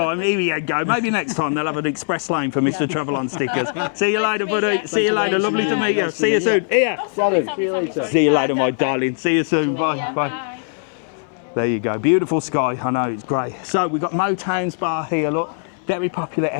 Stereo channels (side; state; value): right; silent; digital silence